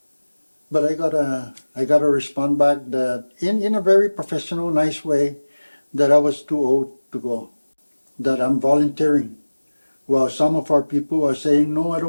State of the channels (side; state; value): both; inverted; correlation -1.00